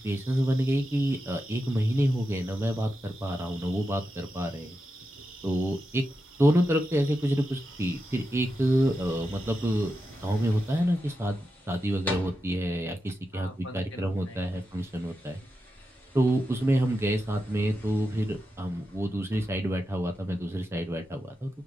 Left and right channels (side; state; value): both; normal; correlation 0.88